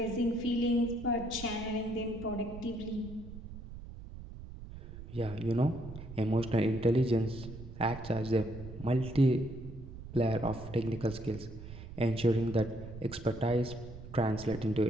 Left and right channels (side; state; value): right; noise; rumble, 13 dB below the sound